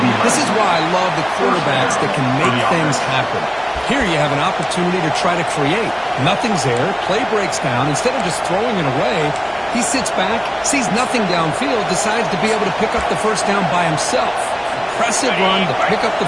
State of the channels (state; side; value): identical; both; correlation 1.00